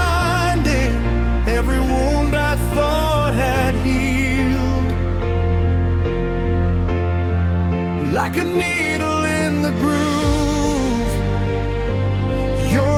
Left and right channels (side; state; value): both; identical; correlation 1.00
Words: every wound I thought had healed. Like a needle in the groove,